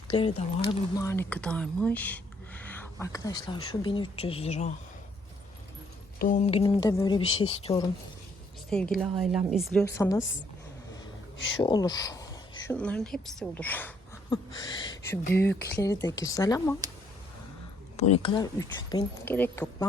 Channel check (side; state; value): both; normal; correlation 0.68